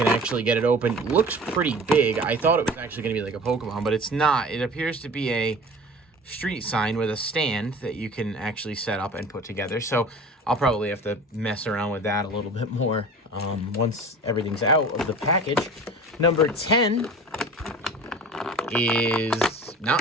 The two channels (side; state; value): both; normal; correlation 0.40